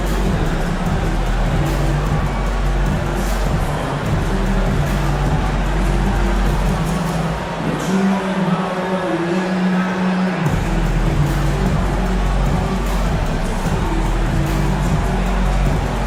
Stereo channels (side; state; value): both; identical; correlation 1.00